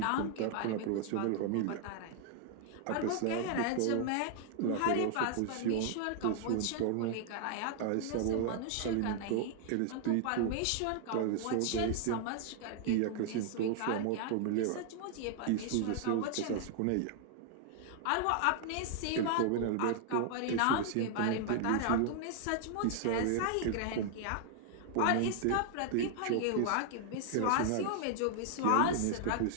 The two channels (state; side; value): different; both; correlation 0.00